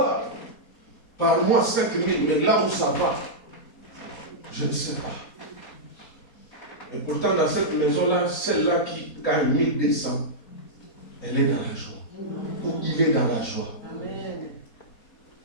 par mois 5 000, mais là où ça va, je ne sais pas. Et pourtant, dans cette maison-là, celle-là qui gagne 1200, elle est dans la joie. Ou il est dans la joie.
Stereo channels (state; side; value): late; right; 4.3 ms